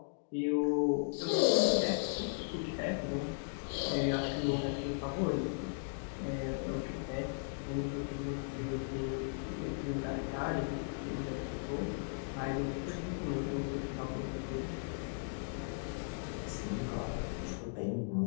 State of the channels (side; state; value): right; silent; digital silence